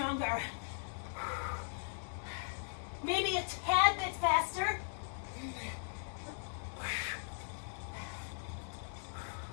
Maybe a tad bit faster.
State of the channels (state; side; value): silent; right; digital silence